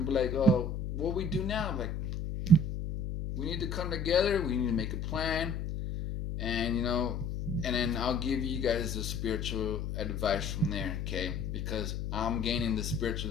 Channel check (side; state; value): left; noise; hum, 3 dB below the sound